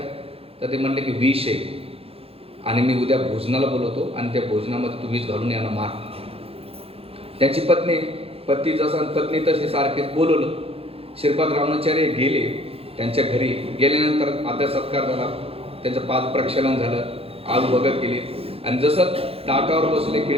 तर ते म्हणले की विष आहे आणि मी उद्या भोजनाला बोलवतो आणि त्या भोजनामध्ये तू विष घालून यांना मार. त्याची पती जसा पत्नी तशी सारखेच बोलवलं. श्रीपाद रामानुजाचार्य गेले त्यांच्या घरी. गेल्यानंतर आदर सत्कार झाला, त्यांचं पाद प्रक्षालन झालं, आग भगत केली. आणि जसं ताटावर बसले,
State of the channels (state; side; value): late; left; 0.28 ms